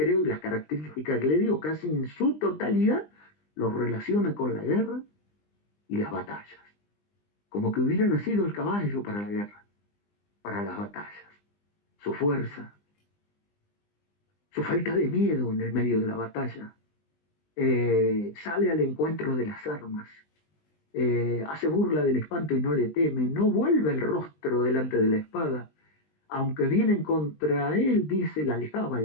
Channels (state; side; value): late; right; 20 ms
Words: y las características que le dio, casi en su totalidad, lo relaciona con la guerra y las batallas. Como que hubiera nacido el caballo para la guerra, para las batallas. Su fuerza, su falta de miedo en el medio de la batalla, sale al encuentro de las armas, hace burla del espanto y no le teme, no vuelve el rostro delante de la espada, aunque vienen contra él, dice, la aljaba, el